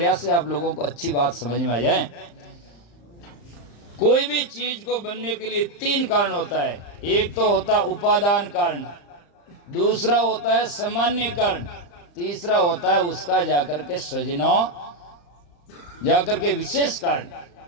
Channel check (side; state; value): right; late; 35 ms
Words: से आप लोगों को अच्छी बात समझ में आ जाए। कोई भी चीज को बनने के लिए 3 कारण होता है। एक तो होता उपादान कारण दूसरा होता है सामान्य कारण तीसरा होता है उसका जाकर के सृजना जाकर के विशेष कारण।